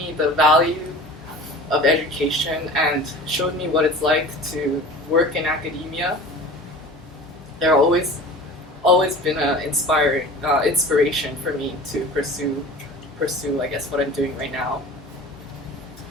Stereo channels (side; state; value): both; normal; correlation 0.39